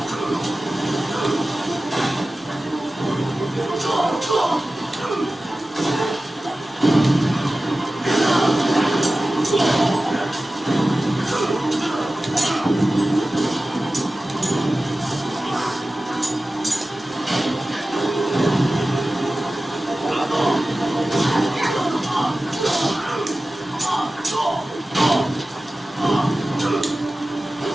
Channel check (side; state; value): both; normal; correlation 0.95